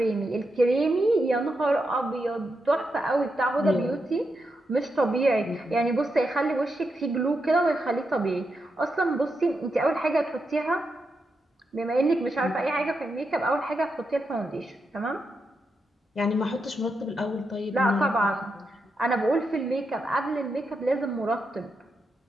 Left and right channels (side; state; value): both; normal; correlation 0.85